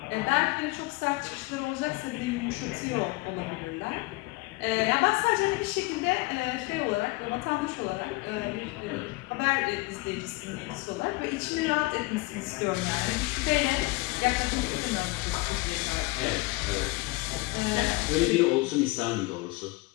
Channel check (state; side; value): quieter; right; 22.8 dB